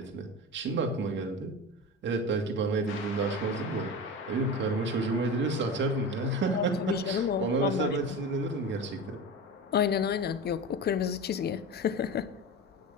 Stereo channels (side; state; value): both; normal; correlation 0.28